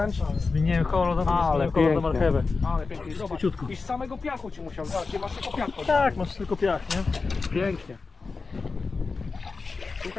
Zmieniłem kolor, Ale kolor na pięknie. marchewę. Ale pięknie. Zobacz. Szybciutko. I z samego piachu ci musiał. Zobacz, nie masz tylko piachu. Tak, masz tylko piach, nie? Pięknie.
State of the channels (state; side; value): quieter; right; 4.2 dB